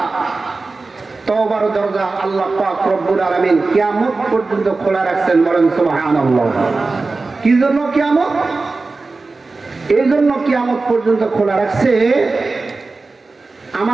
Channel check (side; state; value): left; quieter; 3.7 dB